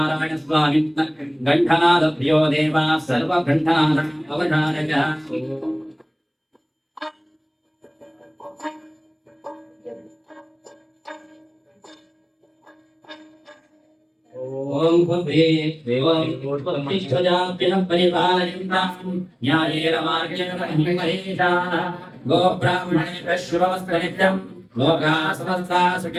ಸ್ವಾಮಿ ಗಂಠನಾದಭ್ಯೋ ದೇವ ಸರ್ವ ಗಂಠನಾದ ಅವಧಾರಯ ಓಂ ಭುವೇ ದೇವಂ ಉತ್ಪತ್ತಿಷ್ಠಜಾಭ್ಯಃ ಪರಿಪಾಲಯಂತಾಂ ನ್ಯಾಯೇನ ಮಾರ್ಗೇಣ ಮಹೇಶಾಃ ಗೋ ಬ್ರಾಹ್ಮಣೇಭ್ಯಃ ಶುಭಮಸ್ತು ನಿತ್ಯಂ ಲೋಕಾಃ ಸಮಸ್ತಾಃ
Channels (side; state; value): both; identical; correlation 1.00